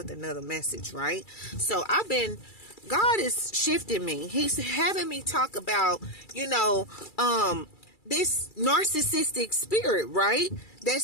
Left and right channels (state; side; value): late; right; 2.3 ms